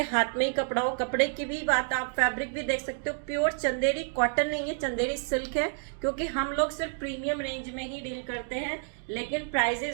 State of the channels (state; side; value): silent; left; digital silence